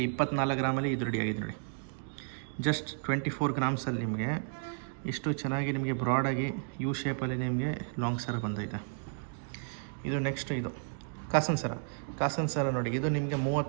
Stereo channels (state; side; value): silent; left; digital silence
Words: 24 ಗ್ರಾಮಲ್ಲಿ ಇದು ರೆಡಿಯಾಗಿದೆ ನೋಡಿ. ಜಸ್ಟ್ 24 ಗ್ರಾಮ್ಸಲ್ಲಿ ನಿಮಗೆ ಇಷ್ಟು ಚೆನ್ನಾಗಿ ನಿಮಗೆ ಬ್ರಾಡಾಗಿ ಯು ಶೇಪಲ್ಲಿ ನಿಮಗೆ ಲಾಂಗ್ ಸರ ಬಂದೈತೆ. ಇದು ನೆಕ್ಸ್ಟ್ ಇದು ಕಾಸನ್ ಸರ ನೋಡಿ. ಇದು ನಿಮಗೆ